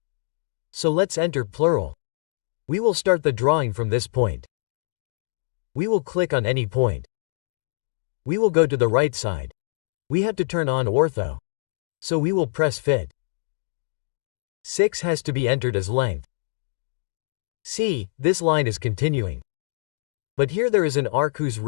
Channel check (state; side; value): silent; right; digital silence